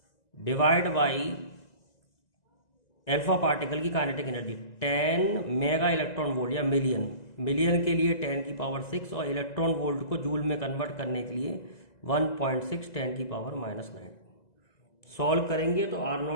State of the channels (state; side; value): late; right; 1.9 ms